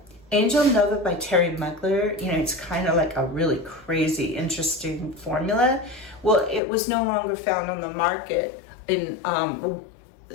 by Terry Mugler. You know, it's kind of like a really crazy, interesting formula. Well, it was no longer found on the market in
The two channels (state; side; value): drops out; right; at 6.6 s